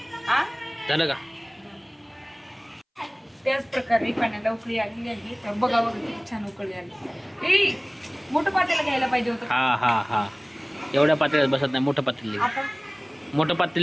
हा झालं का? त्याच प्रकारे पाण्याला उकळी आली आहे. तर बघा किती छान उकळी आली. ए मोठं पातेलं घ्यायला पाहिजे होतं. हा हा हा एवढ्या पातळीत बसत नाही. मोठं पातेलं आता मोठं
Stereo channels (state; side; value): identical; both; correlation 1.00